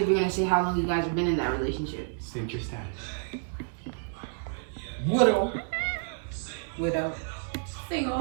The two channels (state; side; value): silent; left; digital silence